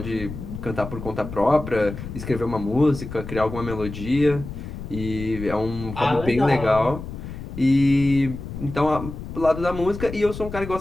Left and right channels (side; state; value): left; noise; rumble, 9 dB below the sound